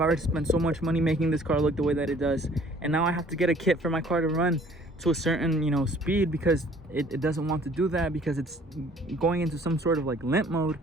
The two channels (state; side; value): normal; both; correlation 0.55